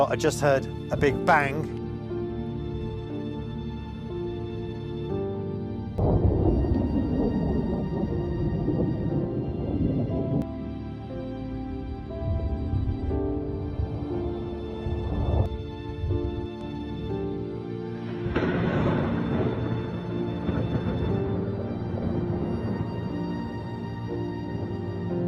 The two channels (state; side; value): identical; both; correlation 1.00